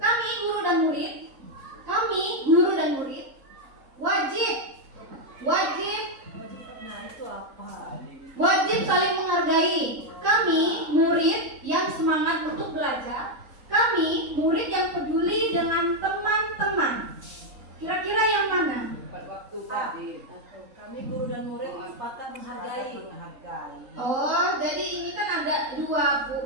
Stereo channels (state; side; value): late; left; 3.8 ms